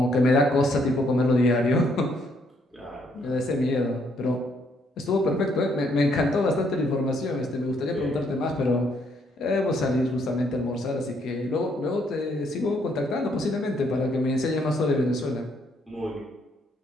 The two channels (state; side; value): normal; both; correlation 0.71